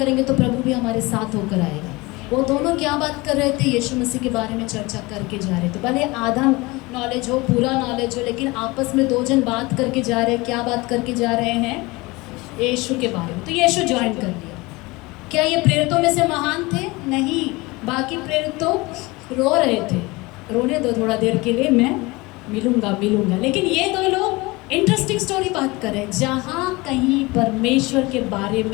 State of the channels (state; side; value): quieter; right; 23.1 dB